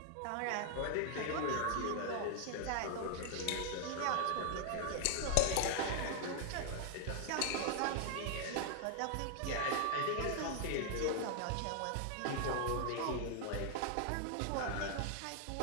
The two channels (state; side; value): different; both; correlation 0.00